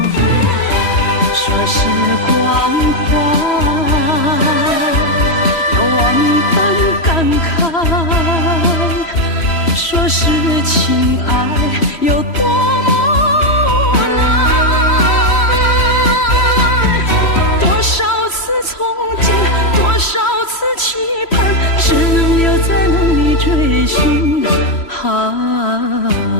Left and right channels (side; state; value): right; late; 3.1 ms